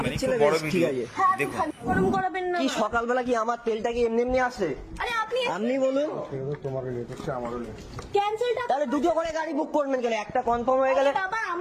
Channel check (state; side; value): identical; both; correlation 1.00